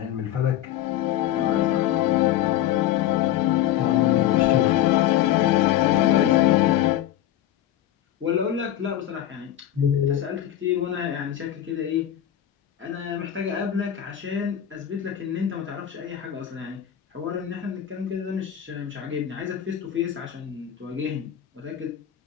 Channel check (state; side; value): quieter; right; 11.6 dB